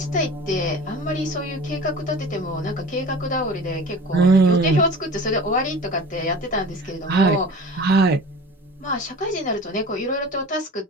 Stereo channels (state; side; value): normal; both; correlation 0.38